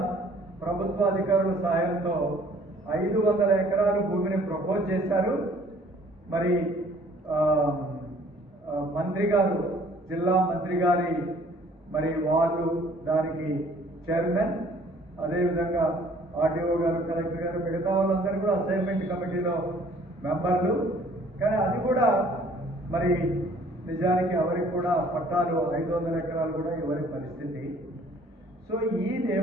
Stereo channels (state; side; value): normal; both; correlation 0.57